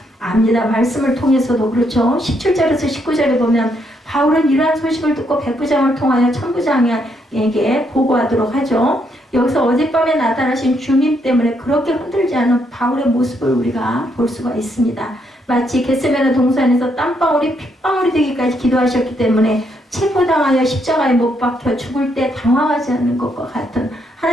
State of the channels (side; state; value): both; normal; correlation 0.75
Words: 압니다. 말씀을 통해서도 그렇죠. 17절에서 19절에 보면 바울은 이러한 소식을 듣고 백부장을 통하여 천부장에게 보고하도록 하죠. 여기서 어젯밤에 나타나신 주님 때문에 그렇게 흔들지 않은 바울의 모습을 우리가 볼 수가 있습니다. 마치 겟세마네 동산에서 땀방울이 핏방울이 되기까지 기도하셨기 때문에 체포당하여 십자가에 못 박혀 죽을 때 당황하지 않는 것과 같은,